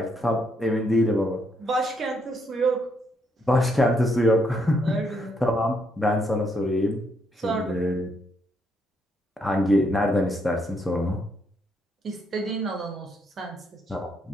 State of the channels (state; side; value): normal; both; correlation 0.74